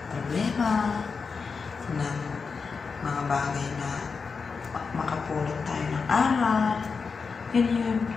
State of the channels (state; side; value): quieter; right; 5.1 dB